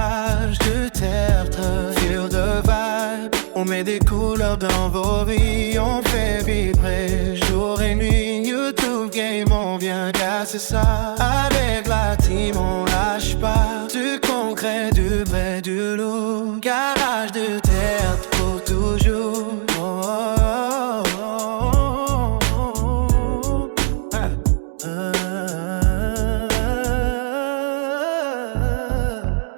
de tertre, feel de vibe. On met des couleurs dans vos vies, on fait vibrer jour et nuit. YouTube Game, on vient casser ça. Avec la team, on lâche pas. Du concret, du vrai, du lourd. Garage de tertre pour toujours. Oh, oh, oh, oh, oh.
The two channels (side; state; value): left; silent; digital silence